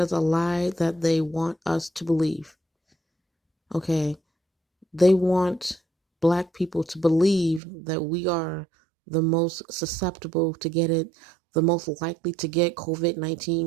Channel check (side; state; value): left; drops out; at 7.6 s